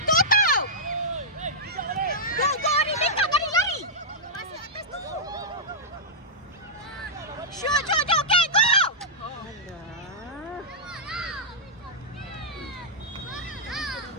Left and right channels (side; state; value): both; normal; correlation -0.11